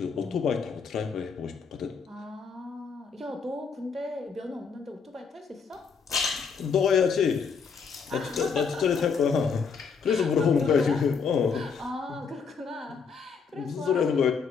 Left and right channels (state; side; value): quieter; right; 5.8 dB